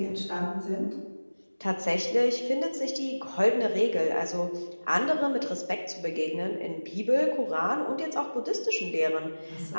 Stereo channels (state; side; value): inverted; both; correlation -1.00